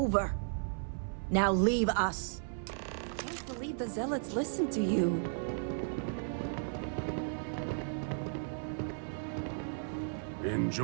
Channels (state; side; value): silent; left; 54 dB below the other